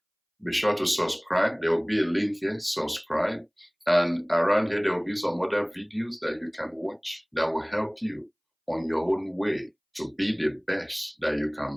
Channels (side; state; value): both; identical; correlation 1.00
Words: be sure to subscribe. There will be a link here, subscribe. And around here, there will be some other videos that you can watch that will help you on your own way to be the best that you